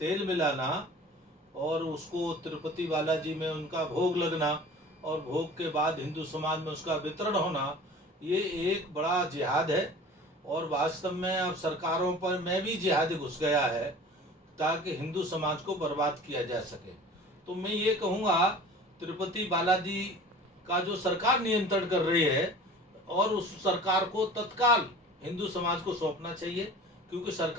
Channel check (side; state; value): both; normal; correlation 0.42